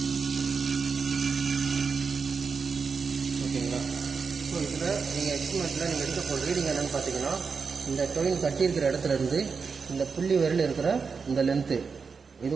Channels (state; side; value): quieter; left; 5.3 dB